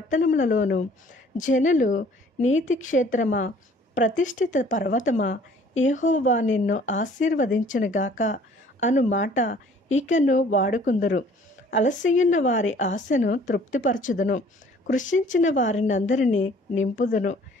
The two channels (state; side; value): normal; both; correlation 0.55